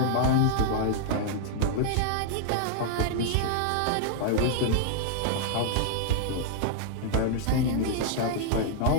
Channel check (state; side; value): different; both; correlation -0.01